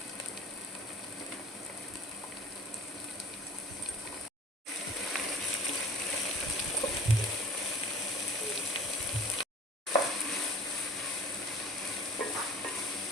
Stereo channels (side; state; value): both; normal; correlation 0.44